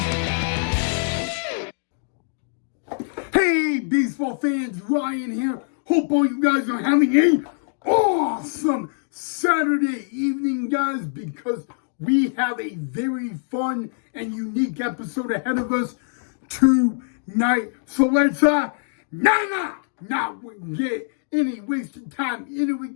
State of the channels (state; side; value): silent; right; digital silence